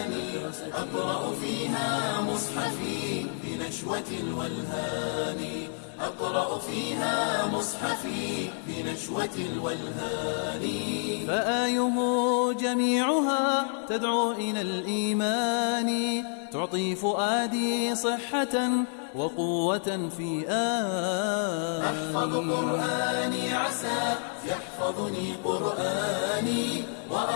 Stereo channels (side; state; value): right; silent; 59 dB below the other